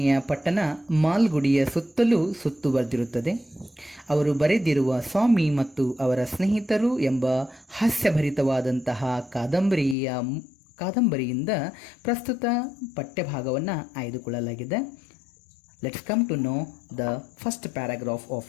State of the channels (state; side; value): drops out; right; at 10.0 s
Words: ಪಟ್ಟಣ ಮಾಲ್ಗುಡಿಯ ಸುತ್ತಲೂ ಸುತ್ತುವರೆದಿರುತ್ತದೆ. ಅವರು ಬರೆದಿರುವ ಸ್ವಾಮಿ ಮತ್ತು ಅವರ ಸ್ನೇಹಿತರು ಎಂಬ ಹಾಸ್ಯಭರಿತವಾದಂತಹ ಕಾದಂಬರಿಯಿಂದ ಪ್ರಸ್ತುತ ಪಠ್ಯಭಾಗವನ್ನು ಆಯ್ದುಕೊಳ್ಳಲಾಗಿದೆ. Let's come to know the first paragraph